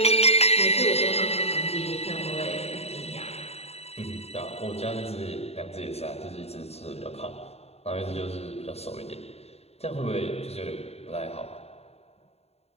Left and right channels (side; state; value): right; late; 0.30 ms